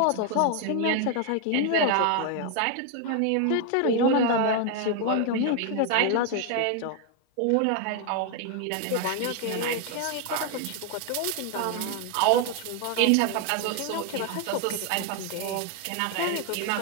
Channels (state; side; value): different; both; correlation 0.01